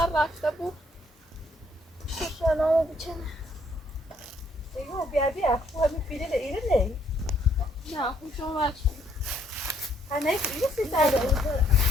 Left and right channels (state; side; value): normal; both; correlation 0.68